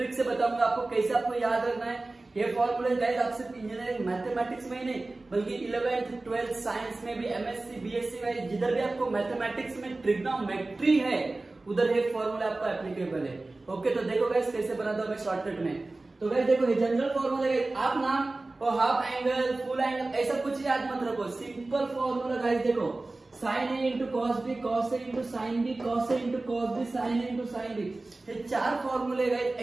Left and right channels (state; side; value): quieter; left; 3.1 dB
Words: से बताऊंगा आपको कैसे आपको याद रखना है ये फॉर्मूले। गाइस आप सिर्फ इंजीनियरिंग मैथमेटिक्स में ही नहीं बल्कि 11th 12th साइंस में भी, MSc BSc में जिधर भी आपको मैथमेटिक्स में ट्रिग्नोमेट्री है उधर ये फॉर्मूला आपका एप्लीकेबल है। ओके, तो देखो गाइस कैसे बनाता हूं मैं शॉर्टकट में। तो गाइस देखो, ये जनरल फॉर्मूला है। आप नाम और हाफ एंगल, फुल एंगल ऐसा कुछ याद मत रखो। सिंपल फॉर्मूला गाइस देखो, sign A into cos B, cos A into sine B, cos A into cos B, sign A into sine B. ये चार फॉर्मूले गाइस,